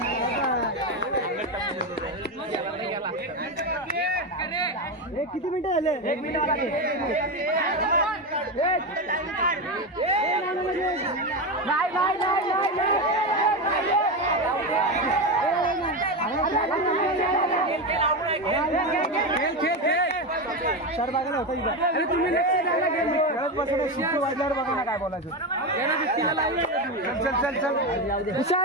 किती मिनिटं झाले? 1 मिनिट सर बघा होता इथं. अरे तुम्ही लक्ष द्यायला गेलो शिस्त वाजल्यावर बघा ना काय बोलायचं. चल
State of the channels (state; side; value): normal; both; correlation 0.15